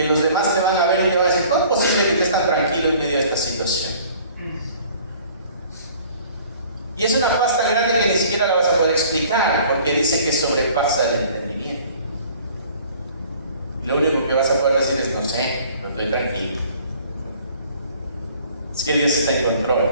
los demás te van a ver y te van a decir: ¿cómo es posible que estés tan tranquilo en medio de esta situación? Y es una paz tan grande que ni siquiera la vas a poder explicar, porque dice que sobrepasa el entendimiento. Lo único que vas a poder decir es: no sé, pero estoy tranquilo. Es que Dios está en control.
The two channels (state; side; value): inverted; both; correlation -0.53